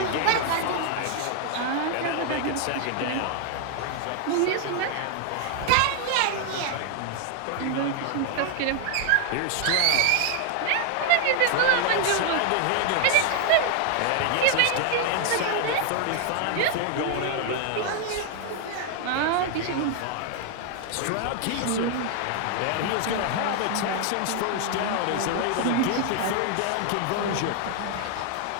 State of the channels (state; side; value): different; both; correlation 0.00